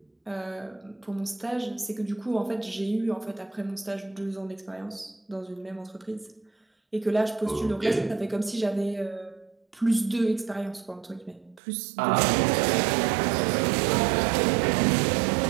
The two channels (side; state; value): left; drops out; at 11.6 s